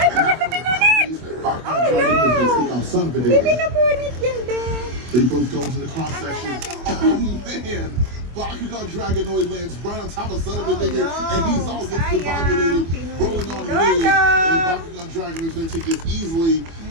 bakit na pinunit? Oh, no. Hindi pinunit yan, Ben. They both go into the cross section. Oh, man. Bakugan Dragonoid lands right on top of Son of a Digger, and he's all discombobulated, rolling on the way. And Bakugan Dragonoid going to take this easily.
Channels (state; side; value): late; left; 24 ms